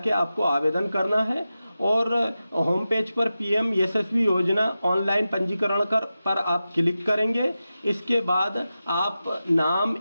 आपको आवेदन करना है। और होम पेज पर पीएम यशस्वी योजना ऑनलाइन पंजीकरण पर आप क्लिक करेंगे। इसके बाद आप नाम,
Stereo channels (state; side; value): inverted; both; correlation -0.93